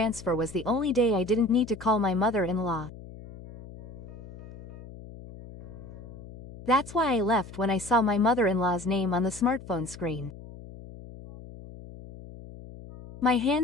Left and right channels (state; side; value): noise; left; hum, 16 dB below the sound